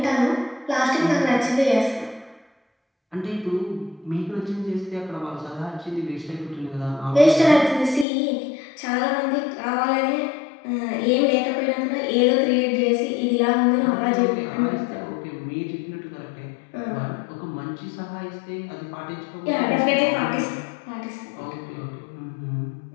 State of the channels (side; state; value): right; drops out; at 8.1 s